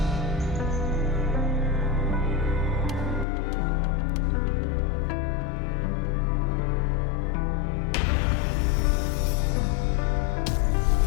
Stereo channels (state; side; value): drops out; right; at 3.2 s